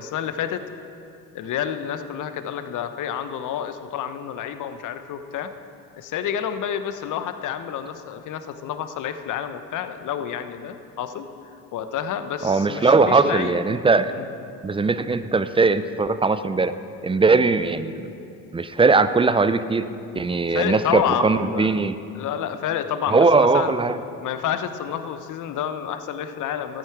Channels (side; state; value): both; normal; correlation 0.35